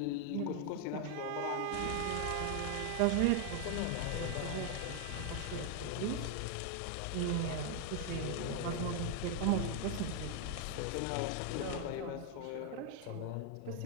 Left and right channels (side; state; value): both; different; correlation 0.00